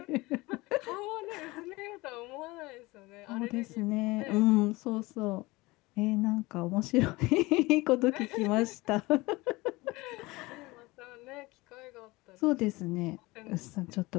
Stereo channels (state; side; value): quieter; right; 21.9 dB